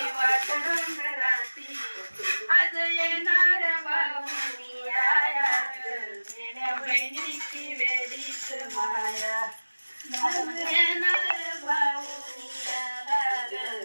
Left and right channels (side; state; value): both; inverted; correlation -1.00